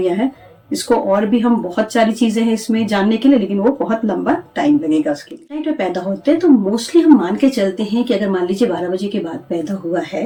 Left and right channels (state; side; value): identical; both; correlation 1.00